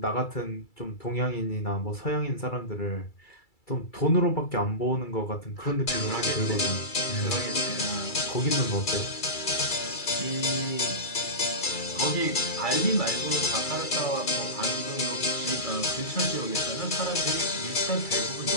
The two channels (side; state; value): right; late; 2.3 ms